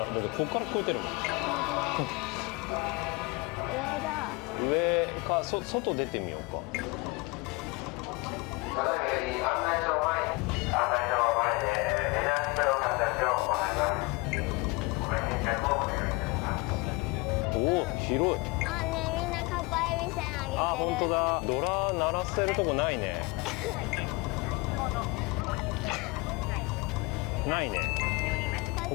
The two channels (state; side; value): quieter; right; 25.7 dB